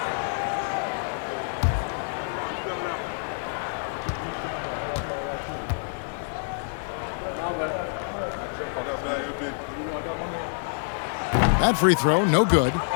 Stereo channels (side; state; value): right; silent; digital silence